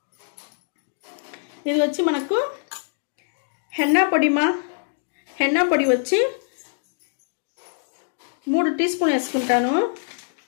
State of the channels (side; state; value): right; silent; digital silence